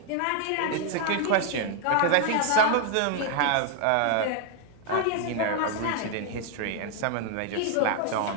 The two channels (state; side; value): different; both; correlation 0.00